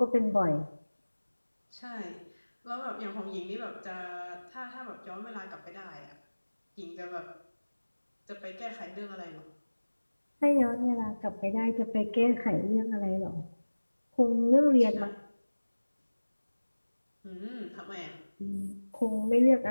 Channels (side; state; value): both; inverted; correlation -1.00